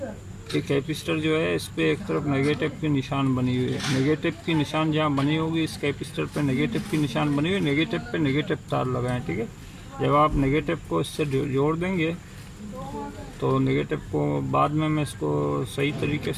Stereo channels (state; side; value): identical; both; correlation 1.00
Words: ये कैपेसिटर जो है इस पर एक तरफ नेगेटिव की निशान बनी हुई है। नेगेटिव की निशान जहाँ बनी होगी इस कैपेसिटर पे नेगेटिव की निशान बनी हुई है, नेगेटिव पे नेगेटिव तार लगाएं। ठीक है, जब आप नेगेटिव को इससे जोड़ देंगे तो नेगेटिव को बाद में मैं इसको सही तरीके